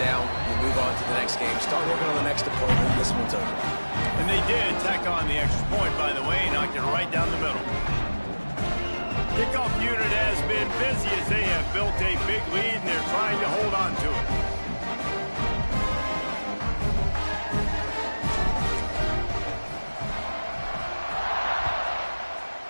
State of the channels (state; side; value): inverted; both; correlation -1.00